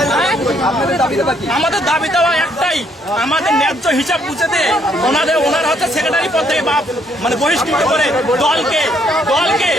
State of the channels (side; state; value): both; normal; correlation 0.69